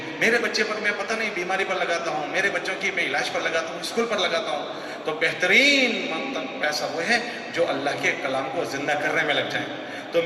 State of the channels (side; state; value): both; identical; correlation 1.00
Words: میرے بچے پر میں پتہ نہیں بیماری پر لگاتا ہوں، میرے بچوں کی میں علاج پر لگاتا ہوں، اسکول پر لگاتا ہوں، تو بہترین پیسہ وہ ہے جو اللہ کے کلام کو زندہ کرنے میں لگ جائیں۔ تو